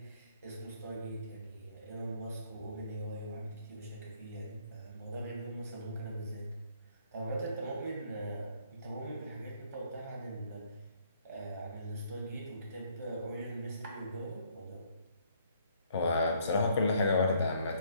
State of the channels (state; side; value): inverted; both; correlation -0.65